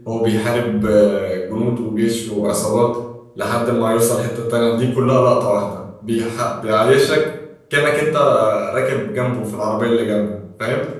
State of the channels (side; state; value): both; identical; correlation 1.00